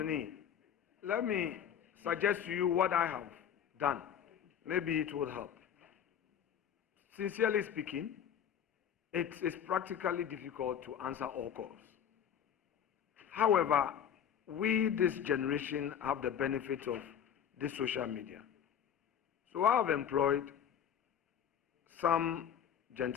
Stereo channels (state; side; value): quieter; right; 8.9 dB